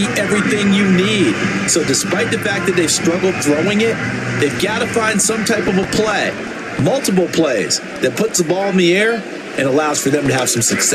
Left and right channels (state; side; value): identical; both; correlation 1.00